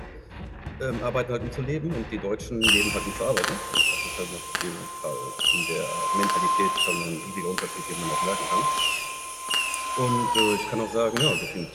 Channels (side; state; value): both; identical; correlation 1.00